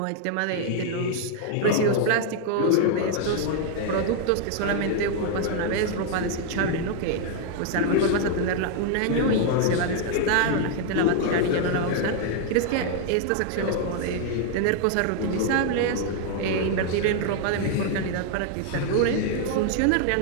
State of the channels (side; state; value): both; different; correlation 0.00